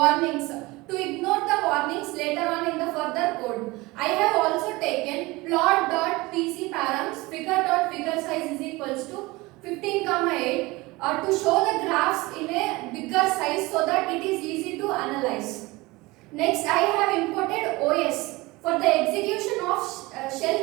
to ignore the warnings later on in the further code. I have also taken plot.pc params figure.figure size is equals to 15,8 to show the graphs in a bigger size so that it is easy to analyze. Next, I have imported OS for the execution of shell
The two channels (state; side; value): quieter; left; 22.0 dB